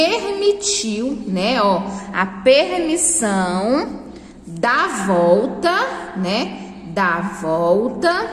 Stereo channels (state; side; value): identical; both; correlation 1.00